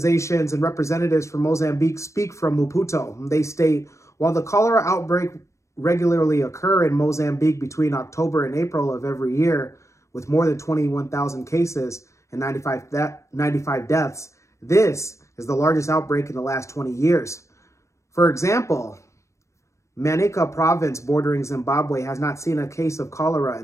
and representatives from Mozambique speak from Maputo. They state, while the cholera outbreak regularly occur in Mozambique between October and April of every year, with more than 21,000 cases and 95 deaths, this is the largest outbreak in the last 20 years. For example, Manica province bordering Zimbabwe has not seen a case of cholera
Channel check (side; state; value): right; late; 0.14 ms